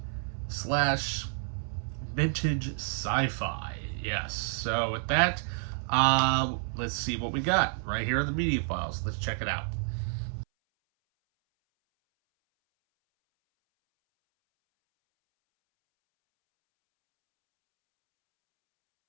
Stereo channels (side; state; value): left; silent; 58 dB below the other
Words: slash vintage sci-fi. Yes, so with that, let's see what we got right here on the Media Files. Let's check it out.